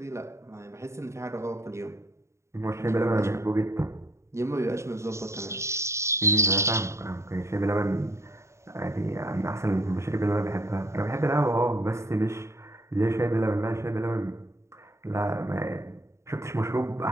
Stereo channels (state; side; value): late; left; 0.14 ms